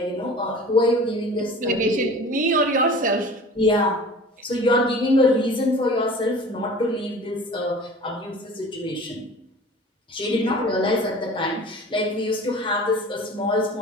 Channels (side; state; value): both; normal; correlation 0.42